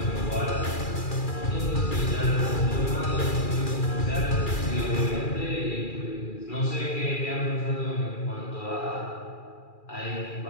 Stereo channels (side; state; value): right; late; 2.4 ms